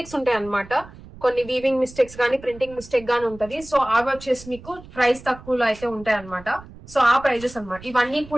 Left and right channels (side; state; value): right; noise; rumble, 18 dB below the sound